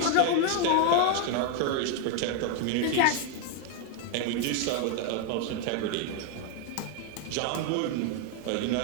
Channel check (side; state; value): both; different; correlation 0.01